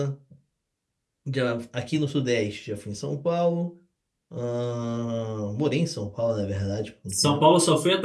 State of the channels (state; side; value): identical; both; correlation 1.00